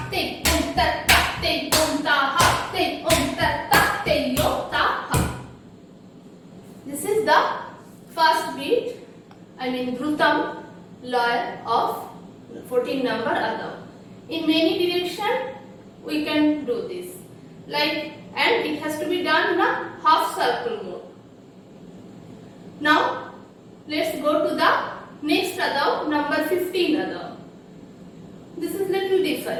te om tat ta, te om ta ha, te om tat ta, te om ta ha. This is the first beat, Dhrutam laya of 14 number Adao. In many direction we can do this, and it has to be done in a half circle mode. Now let's go to the next Adao, number 15 Adao. This is little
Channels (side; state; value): both; identical; correlation 1.00